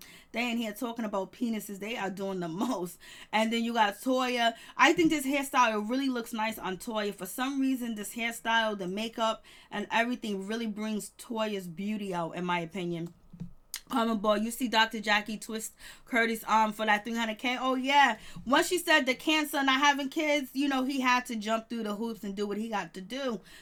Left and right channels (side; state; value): both; identical; correlation 1.00